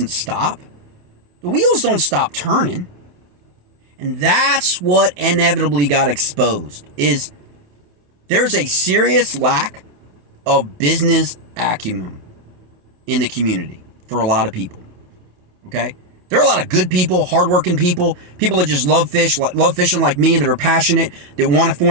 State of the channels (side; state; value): left; late; 28 ms